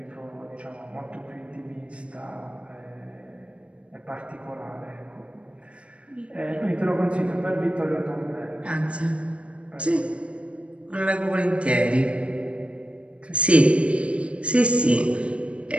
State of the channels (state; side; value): late; left; 0.060 ms